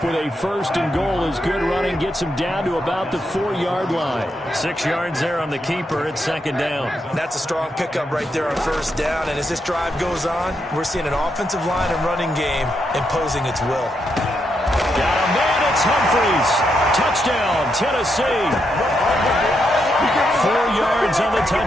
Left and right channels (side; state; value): both; normal; correlation 0.81